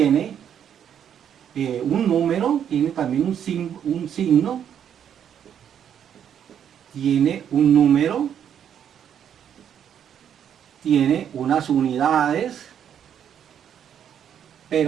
un número, tiene también un signo, tiene un número, tiene unas unidades,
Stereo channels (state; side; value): quieter; left; 9.0 dB